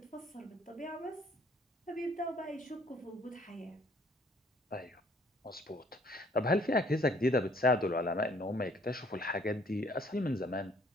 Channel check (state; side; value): normal; both; correlation 0.60